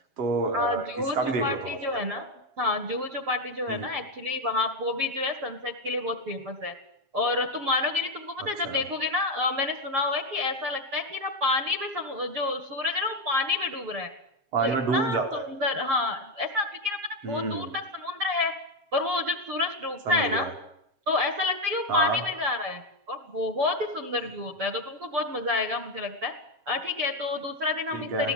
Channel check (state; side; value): late; left; 7.4 ms